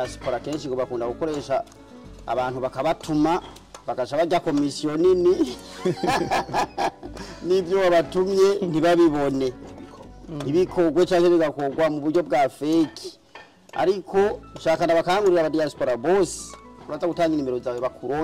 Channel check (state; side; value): identical; both; correlation 1.00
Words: kenshi ngo bakunda gukoresha abantu bakabatuma bakaca bajya komisiyo nini nibyo wabatumye ntibabibone, ntibikogwe cyangwa bigakogwa mu buryo bwa fake. Ariko nshaka ndabakangurira aba diaspora boss uraza gutanga nimero zawe